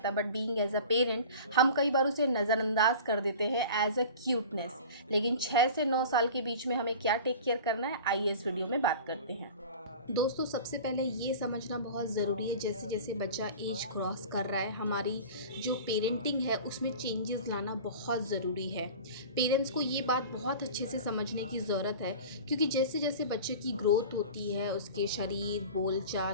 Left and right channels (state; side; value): inverted; both; correlation -0.38